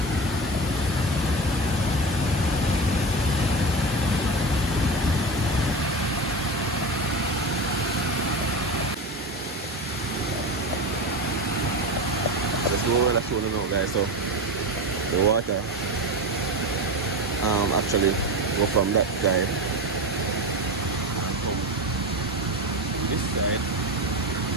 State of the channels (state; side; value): normal; both; correlation 0.23